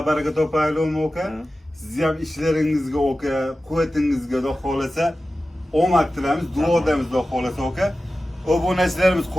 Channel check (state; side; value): normal; both; correlation 0.94